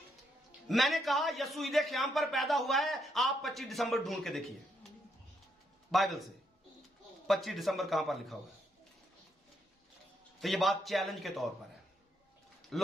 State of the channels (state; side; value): normal; both; correlation 0.77